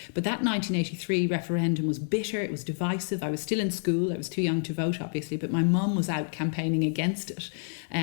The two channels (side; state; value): right; silent; 59 dB below the other